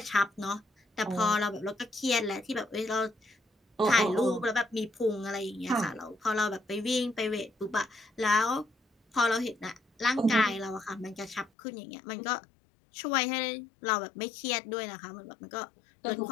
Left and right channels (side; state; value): right; drops out; at 11.5 s